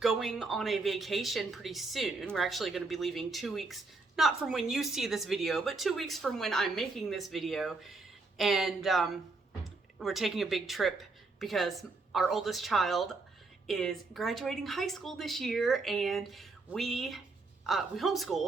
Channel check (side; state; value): left; quieter; 3.7 dB